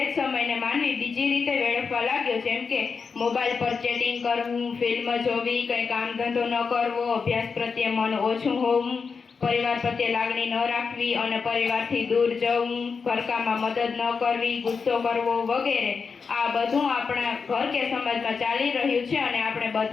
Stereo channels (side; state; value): right; quieter; 5.3 dB